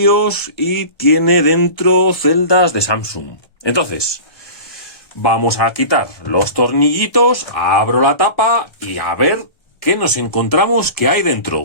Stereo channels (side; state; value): right; late; 1.3 ms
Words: y tiene dentro celdas de Samsung. Entonces, vamos a quitar los tornillitos, abro la tapa y a ver qué nos encontramos que hay